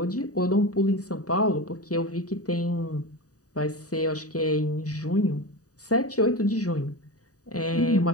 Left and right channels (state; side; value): late; right; 0.67 ms